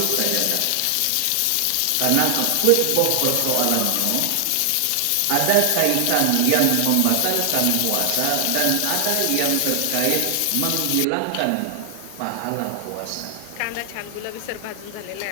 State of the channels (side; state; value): both; different; correlation 0.00